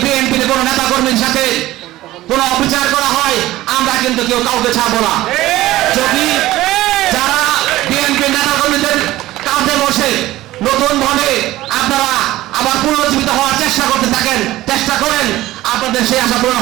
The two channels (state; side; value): quieter; left; 16.3 dB